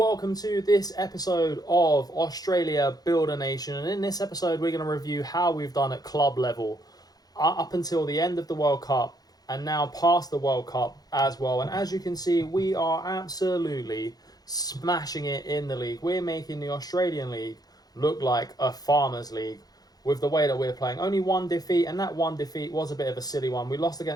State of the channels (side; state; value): right; late; 0.19 ms